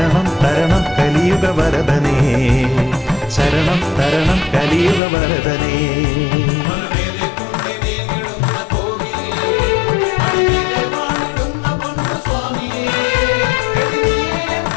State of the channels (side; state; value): right; drops out; at 5.0 s